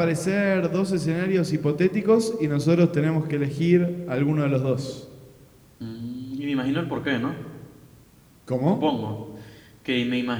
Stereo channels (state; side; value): identical; both; correlation 1.00